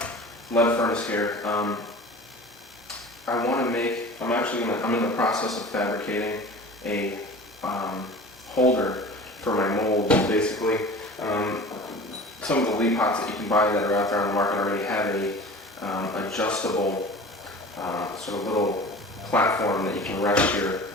furnace here. I'm in the process of fabricating a holder for my molds. Basically, some of the lead pots that you can buy that are out there on the market already have a adjustable sort of little platform that you can rest your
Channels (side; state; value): both; normal; correlation 0.39